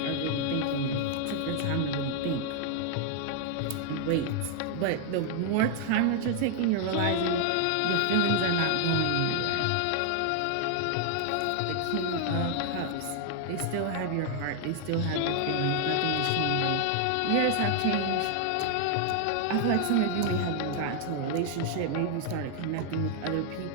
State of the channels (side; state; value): both; different; correlation 0.00